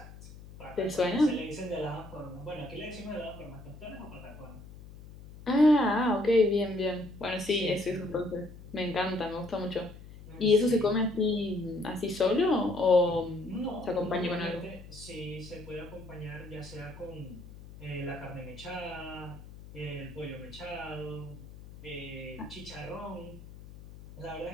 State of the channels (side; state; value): left; noise; hum, 16 dB below the sound